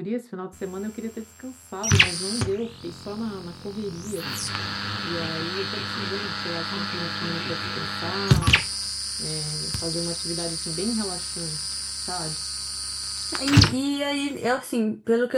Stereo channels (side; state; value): both; identical; correlation 1.00